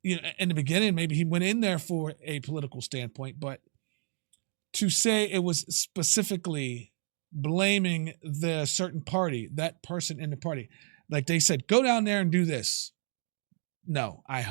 in the beginning, maybe he went in there for a political standpoint, but to say it was specifically blaming the certain party, that person in the party, like they said, go down there and do this. No, I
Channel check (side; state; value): left; silent; digital silence